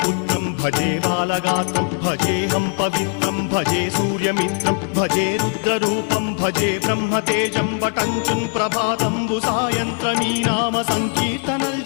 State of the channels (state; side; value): quieter; right; 38.7 dB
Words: भजे बालगात्रं भजेऽहं पवित्रं भजे सूर्यमित्रं भजे रुद्ररूपं भजे ब्रह्मदेवं वटञ्चं ప్రభాతంబు సాయంత్రమీ నామ సంకీర్తనల్